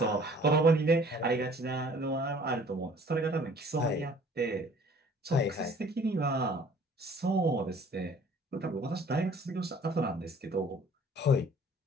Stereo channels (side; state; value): both; normal; correlation 0.53